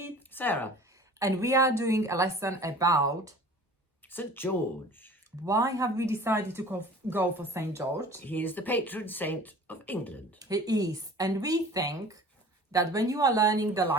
Sarah. and we are doing a lesson about St. George. why have we decided to go for Saint George. He is the patron saint of England. He is, and we think that when you are learning the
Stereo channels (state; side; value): normal; both; correlation 0.44